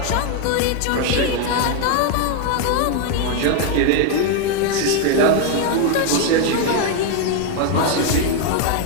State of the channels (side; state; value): both; different; correlation 0.01